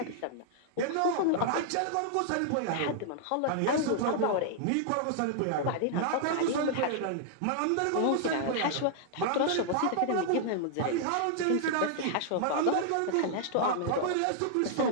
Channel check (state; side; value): different; both; correlation -0.01